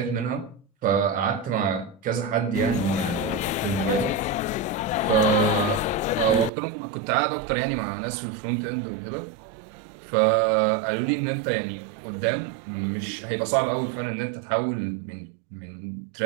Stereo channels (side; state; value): left; drops out; at 6.5 s